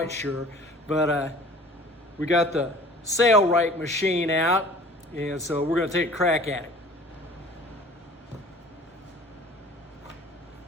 sure, but we got the Sailrite machine out, and so we're gonna take a crack at it.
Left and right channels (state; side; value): normal; both; correlation 0.47